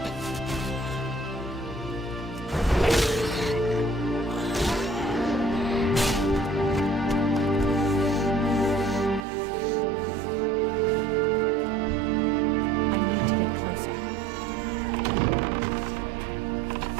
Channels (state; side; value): drops out; left; at 9.2 s